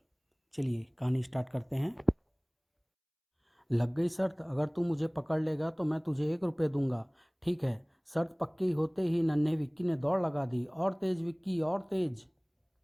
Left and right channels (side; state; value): both; identical; correlation 1.00